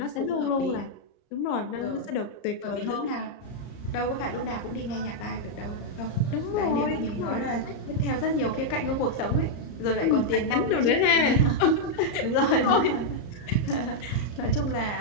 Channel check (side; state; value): right; late; 34 ms